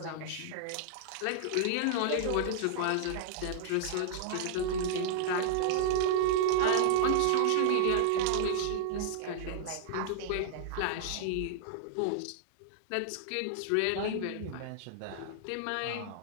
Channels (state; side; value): different; both; correlation -0.01